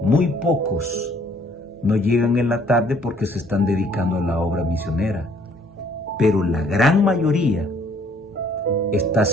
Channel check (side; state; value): both; normal; correlation 0.61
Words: Muy pocos no llegan en la tarde porque se están dedicando a la obra misionera. Pero la gran mayoría está